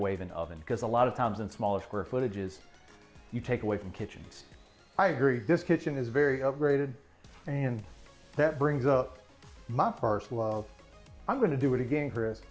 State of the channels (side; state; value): both; identical; correlation 1.00